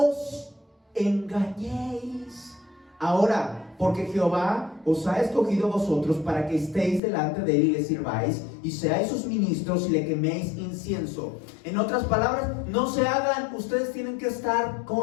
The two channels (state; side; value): drops out; right; at 7.0 s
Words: engañéis ahora, porque Jehová os ha escogido a vosotros para que estéis delante de él y le sirváis y seáis sus ministros y le queméis incienso. En otras palabras, no se hagan, ustedes tienen que estar